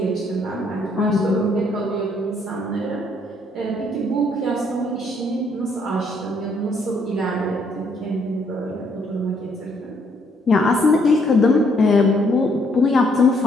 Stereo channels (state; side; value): normal; both; correlation 0.69